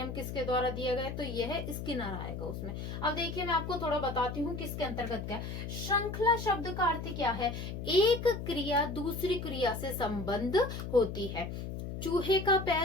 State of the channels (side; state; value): left; noise; hum, 6 dB below the sound